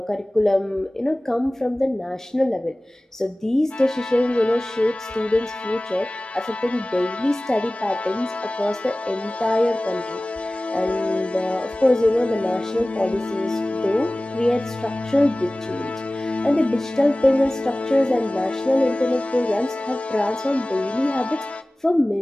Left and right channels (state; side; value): normal; both; correlation 0.98